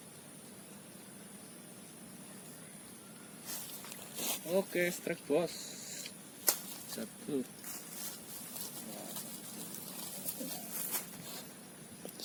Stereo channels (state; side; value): identical; both; correlation 1.00